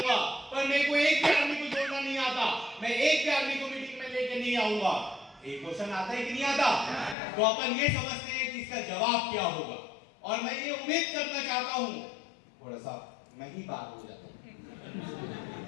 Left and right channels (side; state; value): right; drops out; at 7.2 s